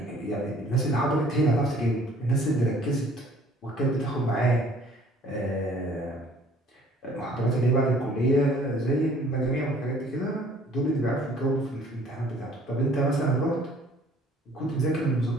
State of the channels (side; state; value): both; normal; correlation 0.55